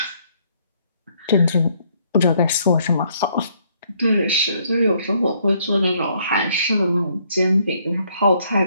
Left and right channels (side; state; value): both; inverted; correlation -0.68